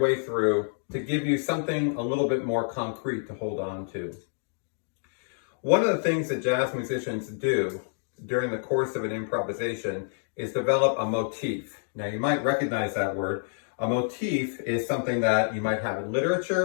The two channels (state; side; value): silent; right; digital silence